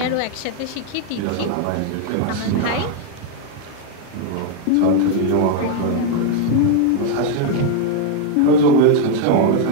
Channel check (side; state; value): both; different; correlation 0.01